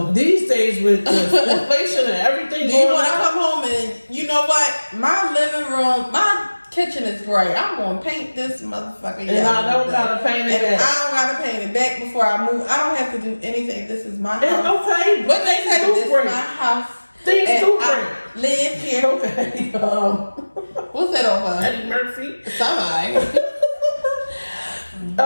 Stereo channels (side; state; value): both; inverted; correlation -1.00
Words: these days with the inflation and everything, do you want to come home and you know what? My living room, my kitchen is great. I'm gonna paint this motherfucker. And I don't gotta paint it back. I don't gotta paint it back before I move. I don't have to do anything. This is my house. Okay, what they say? This is my house. Things do break. Live here. Okay. What's that over? Eddie Murphy. Somebody.